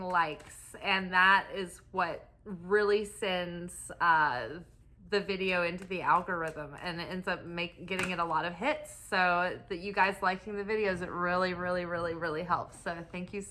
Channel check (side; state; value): both; identical; correlation 1.00